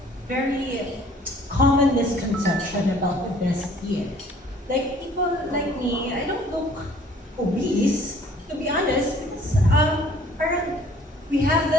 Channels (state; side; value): normal; both; correlation 0.55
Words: common misconception about obesity. Like people like me, I don't look obese, to be honest, because parang we have